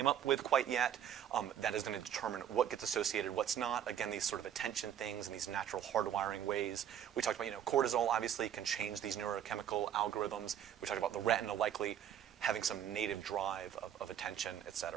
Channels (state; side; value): quieter; left; 9.9 dB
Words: up with quite yet. That is going to determine what gets associated, what's not. Again, these sort of attention things and these natural hardwiring ways. We talked about, cortisol obviously can change these neurochemical algorithms. We talked about the retina likely having some native drive of attention, et